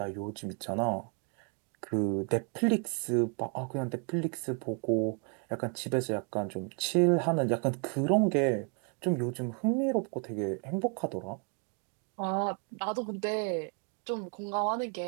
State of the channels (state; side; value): quieter; left; 37.5 dB